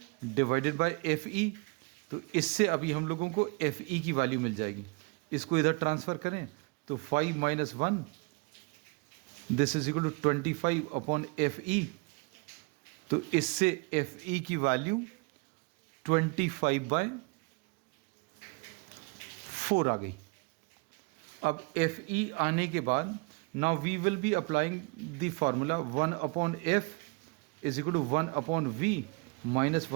डिवाइडेड बाय FE. तो इससे अभी हम लोगों को FE की वैल्यू मिल जाएगी. इसको इधर ट्रांसफ़र करें तो 5 minus 1 this is equal to 25 upon FE. तो इससे FE की वैल्यू 25 बाय 4 आ गई. अब FE आने के बाद now we will be applying the formula 1 upon F is equal to 1 upon V minus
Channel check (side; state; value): left; quieter; 30.4 dB